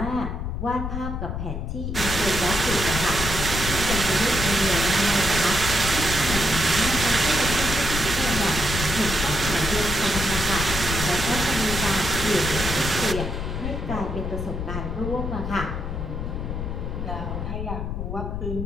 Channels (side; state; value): left; noise; rumble, 4 dB below the sound